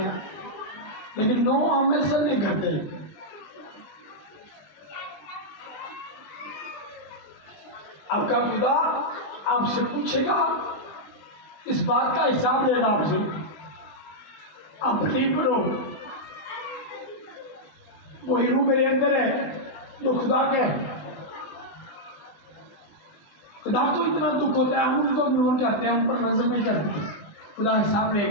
लेकिन नो हम ऐसा नहीं करते। आपका खुदा आपसे पूछेगा, इस बात का हिसाब लेना आपसे। आप बिलीव करो, वही रूह मेरे अंदर है जो खुदा के है। खुदा को इतना दुख होता है, हम उनको इग्नोर करते हैं, हम पर नजर नहीं करते। खुदा हिसाब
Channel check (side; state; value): right; late; 20 ms